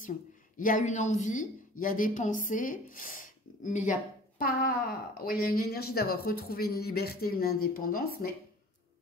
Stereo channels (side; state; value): both; normal; correlation 0.46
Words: Il y a une envie, il y a des pensées, mais il n'y a pas... Oui, il y a une énergie d'avoir retrouvé une liberté, une indépendance, mais